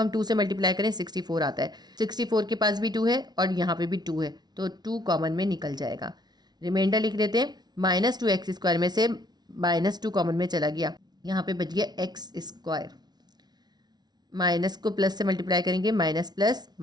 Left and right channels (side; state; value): left; late; 0.19 ms